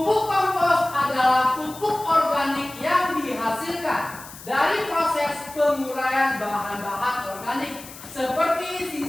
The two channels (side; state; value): left; noise; hiss, 16 dB below the sound